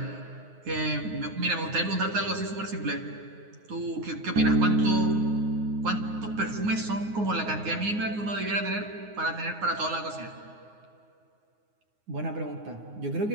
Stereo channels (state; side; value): late; left; 9.5 ms